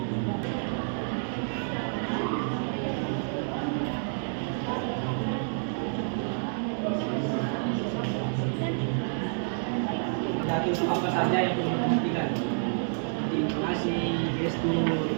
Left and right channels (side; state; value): left; silent; digital silence